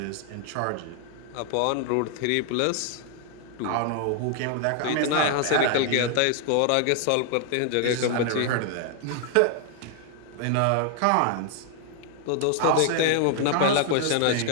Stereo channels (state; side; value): different; both; correlation 0.00